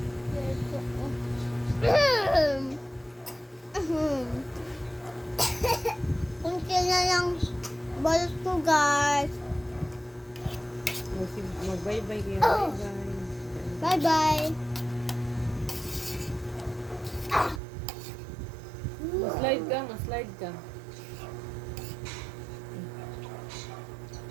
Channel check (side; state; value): left; drops out; at 17.6 s